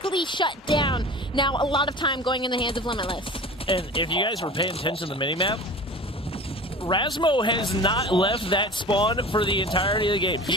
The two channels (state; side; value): normal; both; correlation 0.37